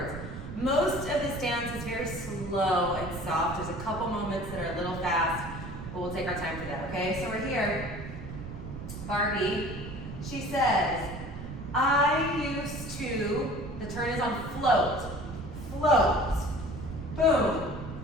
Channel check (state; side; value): noise; right; rumble, 9 dB below the sound